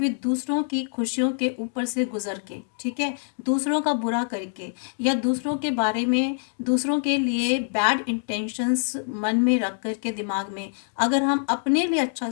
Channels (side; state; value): right; silent; 62 dB below the other